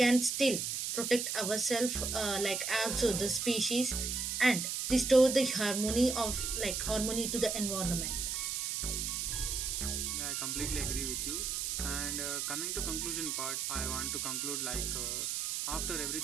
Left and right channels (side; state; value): right; noise; hiss, 1 dB below the sound